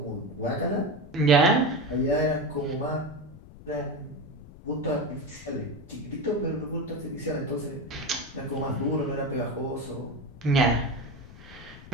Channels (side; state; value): left; noise; rumble, 18 dB below the sound